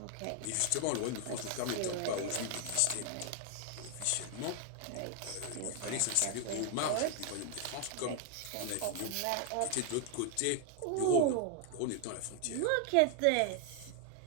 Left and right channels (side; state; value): both; different; correlation 0.00